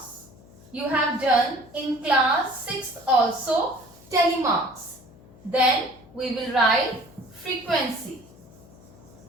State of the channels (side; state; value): left; noise; hum, 23 dB below the sound